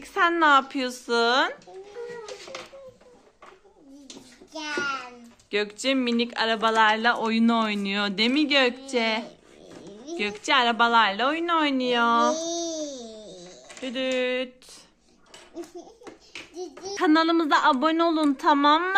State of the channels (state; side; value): identical; both; correlation 1.00